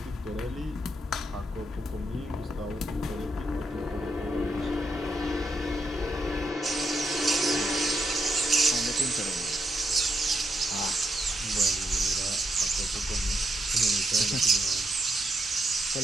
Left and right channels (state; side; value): normal; both; correlation 0.82